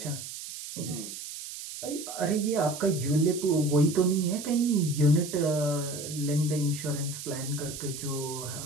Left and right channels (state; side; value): noise; right; hiss, 10 dB below the sound